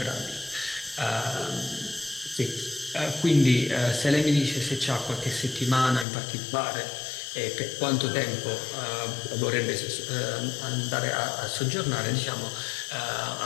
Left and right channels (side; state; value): right; drops out; at 6.1 s